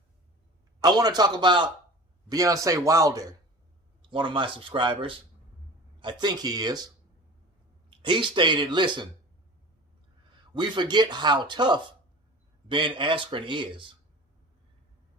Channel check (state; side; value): normal; both; correlation 0.39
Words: I want to talk about Deontay Wilder, one of my subscribers. I think he is. He stated, listen, we forget how tough Ben Askren is.